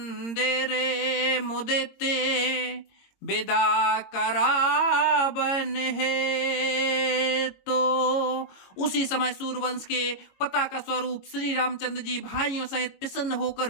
मुदिते विदा करावन है। तो उसी समय सूर्यवंश के पताका स्वरूप श्री रामचंद्र जी भाइयों सहित प्रसन्न होकर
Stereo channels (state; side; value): late; right; 22 ms